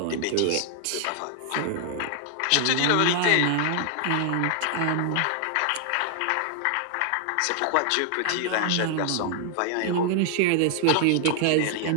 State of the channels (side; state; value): both; different; correlation 0.00